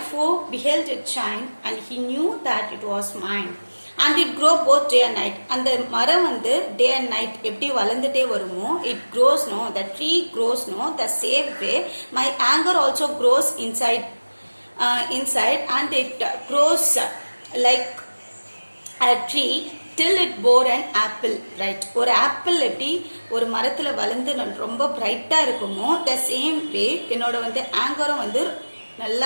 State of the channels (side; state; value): both; inverted; correlation -1.00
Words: foe beheld it shine, and he knew that it was mine. And it grow both day and night. அந்த மரம் வந்து day and night எப்படி வளர்ந்துட்டே வருமோ, it grows, no? The tree grows, no? The same way my anger also grows inside, and it grows like a tree till it bore an apple bright. ஒரு apple எப்படி ஒரு மரத்தில் வளர்ந்து ரொம்ப பிரைட்டாக இருக்குமோ, த சேம் வே என்னோட வந்து ஆங்கரும் வந்து